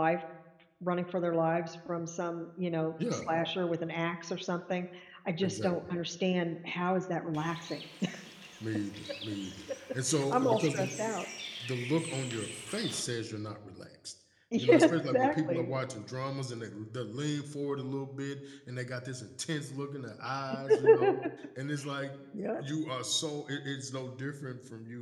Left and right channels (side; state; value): both; identical; correlation 1.00